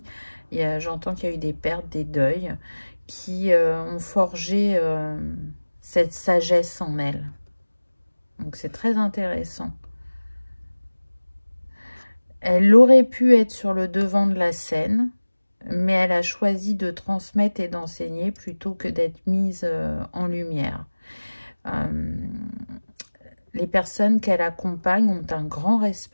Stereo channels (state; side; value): inverted; both; correlation -1.00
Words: J'entends qu'il y a eu des pertes, des deuils, qui ont forgé cette sagesse en elle. Donc c'est très intéressant. Elle aurait pu être sur le devant de la scène, mais elle a choisi de transmettre et d'enseigner plutôt que d'être mise en lumière. Les personnes qu'elle accompagne ont un grand